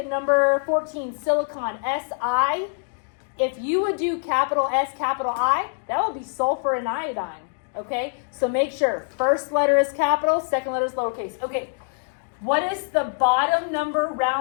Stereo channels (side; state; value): right; silent; digital silence